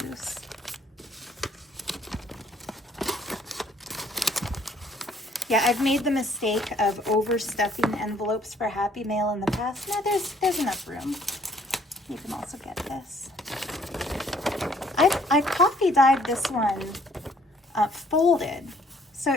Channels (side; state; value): both; normal; correlation 0.62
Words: loose. Yeah, I've made the mistake of overstuffing envelopes for Happy Mail in the past. No, there's enough room. You can also get this. I coffee dyed this one folded. So